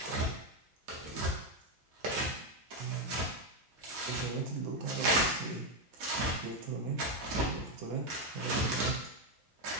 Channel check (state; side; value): normal; both; correlation 0.05